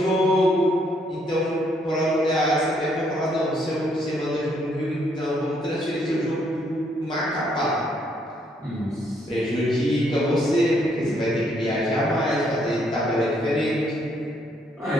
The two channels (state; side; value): normal; both; correlation 0.70